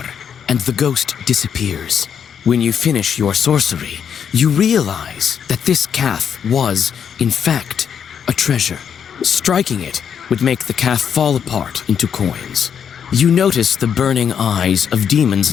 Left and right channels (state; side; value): quieter; right; 7.9 dB